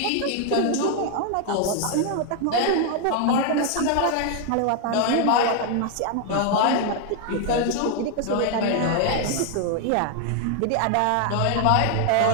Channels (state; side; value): different; both; correlation 0.00